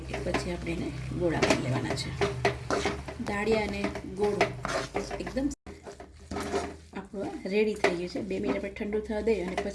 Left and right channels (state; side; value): identical; both; correlation 1.00